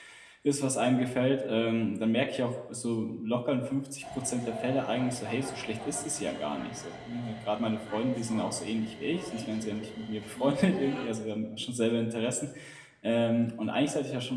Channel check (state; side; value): identical; both; correlation 1.00